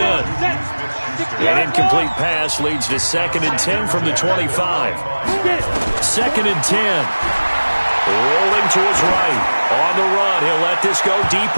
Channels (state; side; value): inverted; both; correlation -1.00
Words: An incomplete pass leads to 2nd and 10 from the 25. 2nd and 10. Rolling to his right. On the run, he'll let this go deep